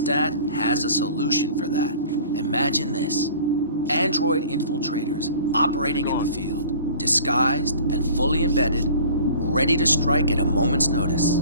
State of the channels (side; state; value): both; inverted; correlation -0.46